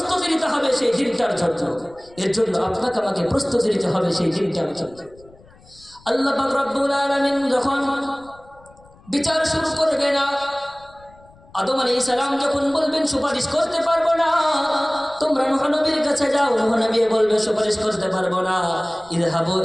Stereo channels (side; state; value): left; noise; rumble, 26 dB below the sound